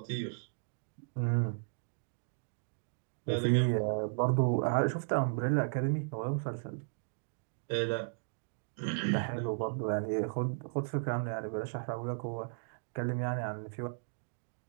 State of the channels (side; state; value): left; silent; digital silence